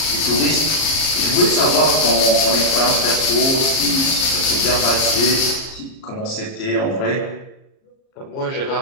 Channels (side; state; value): right; late; 38 ms